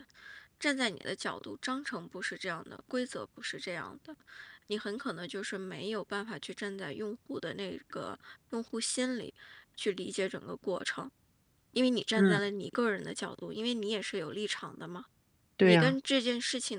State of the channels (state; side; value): identical; both; correlation 1.00